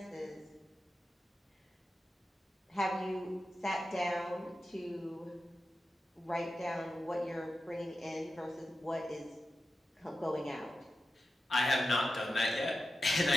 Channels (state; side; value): normal; both; correlation 0.92